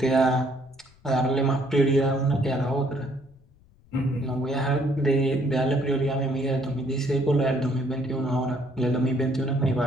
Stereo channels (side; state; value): left; noise; rumble, 29 dB below the sound